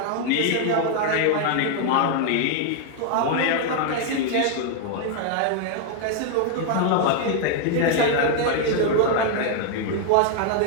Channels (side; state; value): both; different; correlation 0.00